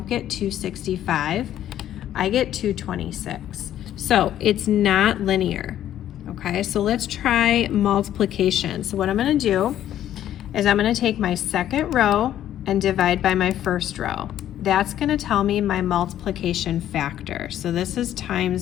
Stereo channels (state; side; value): quieter; right; 11.6 dB